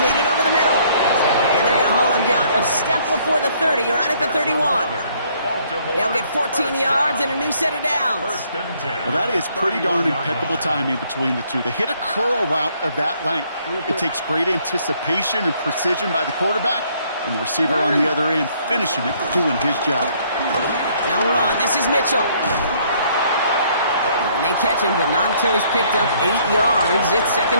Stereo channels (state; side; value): inverted; both; correlation -0.65